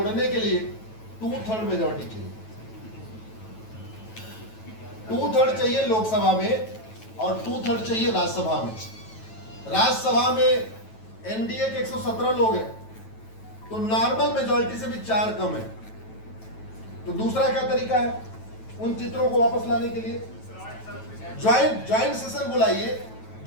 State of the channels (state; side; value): late; right; 9.2 ms